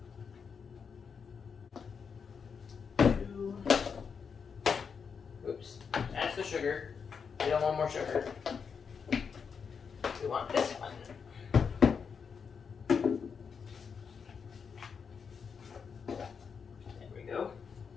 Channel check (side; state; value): right; quieter; 6.2 dB